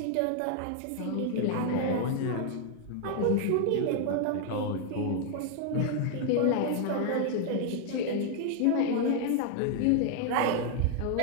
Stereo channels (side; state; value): both; different; correlation 0.00